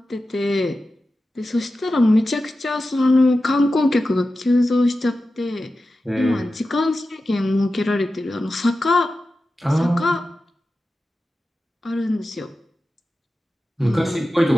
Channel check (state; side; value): normal; both; correlation 0.93